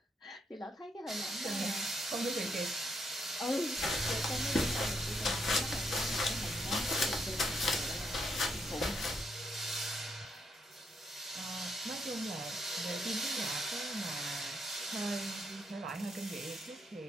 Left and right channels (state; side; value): normal; both; correlation 0.76